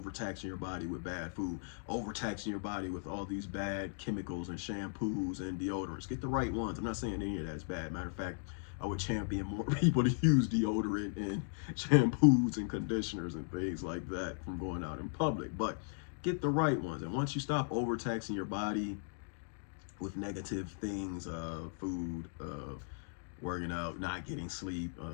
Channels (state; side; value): silent; right; digital silence